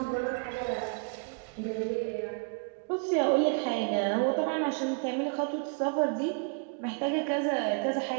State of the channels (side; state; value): left; quieter; 37.1 dB